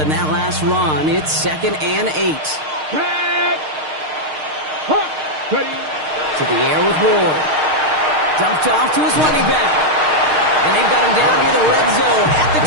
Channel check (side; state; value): left; late; 6.5 ms